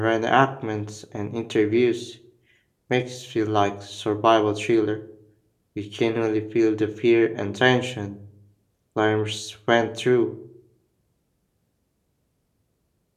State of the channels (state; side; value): identical; both; correlation 1.00